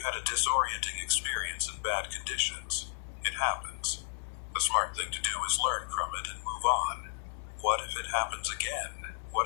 had a disorienting experience in bad conditions. It happens. The smart thing to do is learn from it and move on. What if it happens again?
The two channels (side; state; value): right; silent; 56 dB below the other